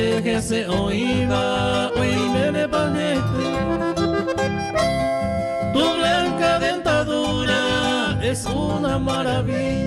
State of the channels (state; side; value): identical; both; correlation 1.00